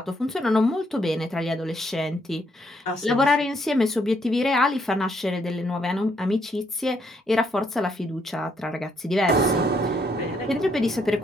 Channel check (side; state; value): both; normal; correlation 0.72